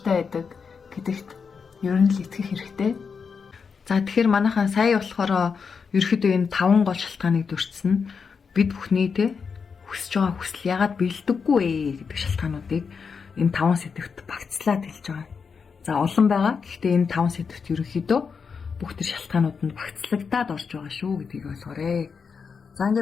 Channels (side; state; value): right; quieter; 5.7 dB